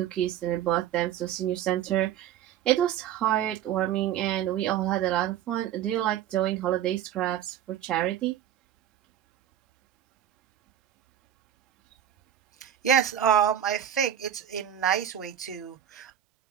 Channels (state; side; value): quieter; left; 10.6 dB